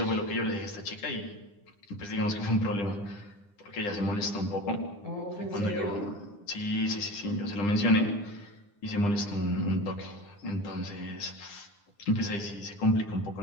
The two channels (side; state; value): right; late; 9.9 ms